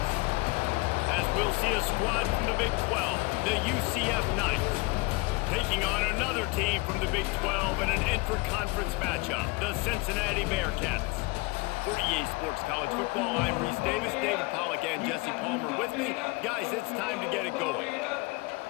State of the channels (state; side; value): quieter; right; 25.7 dB